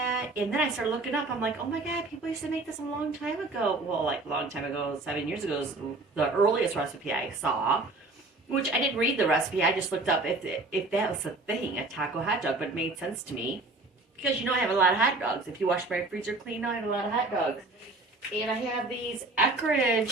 and then I started looking up. I'm like, oh my god, people used to make this a long time ago. Well, like a long time ago, 7 years ago is the earliest recipe I saw, which I didn't read the recipe. I just looked up if that was a thing, a taco hot dog, but it made sense to me. Because I have a lot of hot dogs. If you wash my freezer clean, I have a lot of hot dogs. And I have these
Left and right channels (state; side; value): quieter; left; 3.1 dB